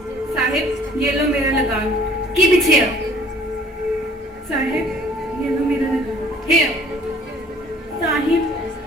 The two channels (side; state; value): both; normal; correlation 0.55